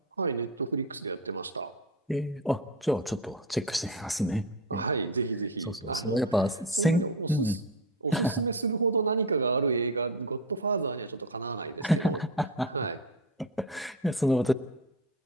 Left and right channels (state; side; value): normal; both; correlation 0.19